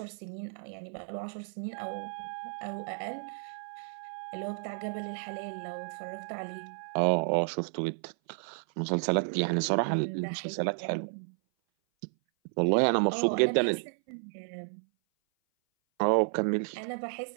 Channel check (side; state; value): left; silent; 56 dB below the other